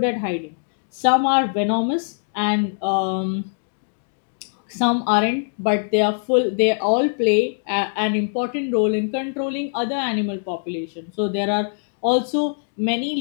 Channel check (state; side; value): silent; right; digital silence